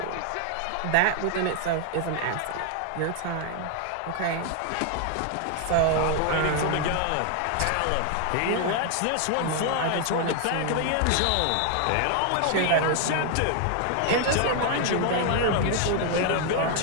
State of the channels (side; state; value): both; different; correlation 0.00